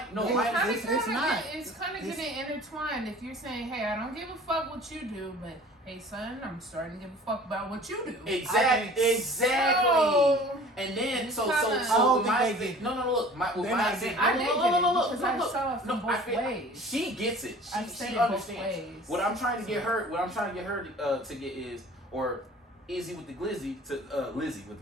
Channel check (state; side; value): normal; both; correlation 0.46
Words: it's kind of getting intertwined. If you're saying, hey, I don't give a fuck what you do, but hey son, I'm starting to give a fuck about what you do. Exactly. So, and then it's so kinda- look, my example. I did get it because I Look. saw it from both ways. She gets it. She both understands. ways. What I'm trying to get her to get is, or Izzy with the Glizzy Lizzy